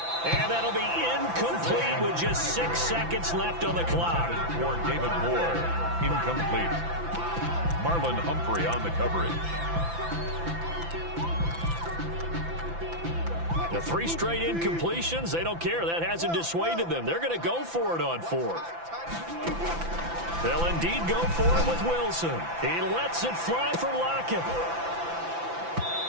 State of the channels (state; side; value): late; left; 5.9 ms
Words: And that'll be incomplete with just 6 seconds left on the clock. For David Moore, incomplete. Marlon Humphrey on the coverage. The 3 straight incompletions, they don't care. That hasn't dissuaded them. They're going to go for it on 4th. They'll indeed go for it with Wilson. He lets it fly for Lockett.